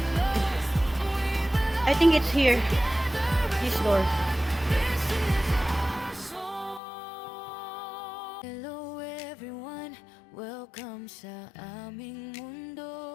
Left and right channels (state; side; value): drops out; right; at 6.8 s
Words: I think it's here. This door. Hello everyone, welcome sa aming